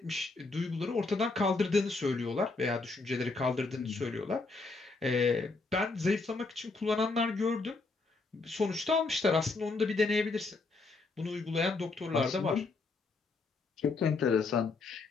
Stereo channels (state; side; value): quieter; right; 3.8 dB